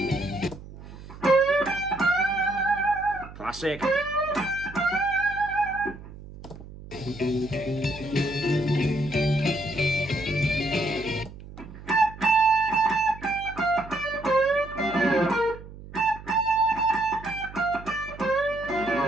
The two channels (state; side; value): noise; right; hum, 16 dB below the sound